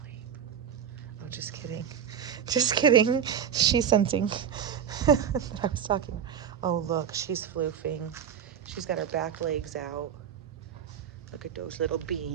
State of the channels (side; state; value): left; quieter; 8.4 dB